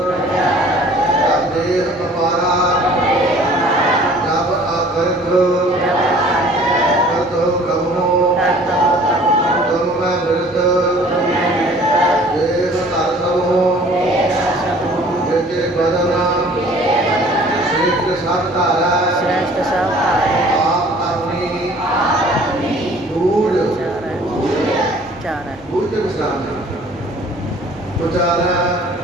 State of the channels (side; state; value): both; normal; correlation 0.51